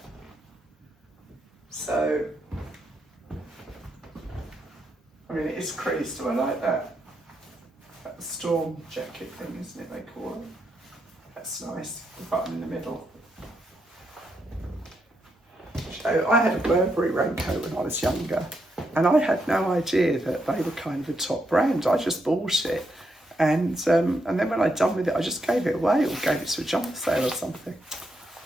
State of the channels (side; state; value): both; normal; correlation 0.81